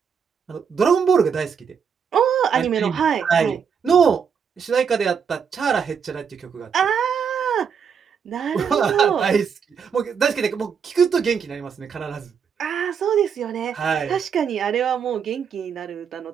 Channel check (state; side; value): quieter; left; 6.8 dB